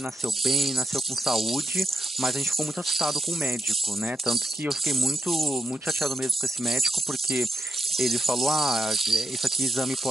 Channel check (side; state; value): both; normal; correlation 0.85